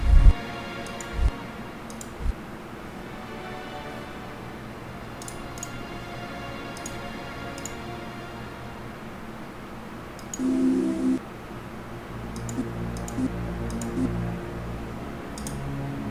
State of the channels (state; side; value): identical; both; correlation 1.00